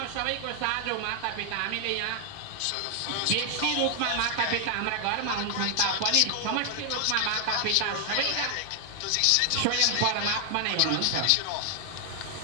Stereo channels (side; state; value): both; different; correlation 0.00